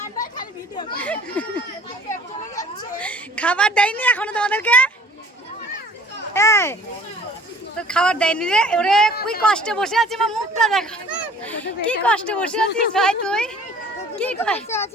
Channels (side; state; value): both; normal; correlation 0.51